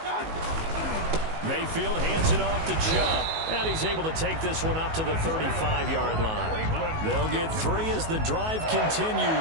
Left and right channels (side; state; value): left; late; 19 ms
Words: Mayfield hands it off to Chubb, and he's able to take this one up to the 35-yard line. They'll get 3 as the drive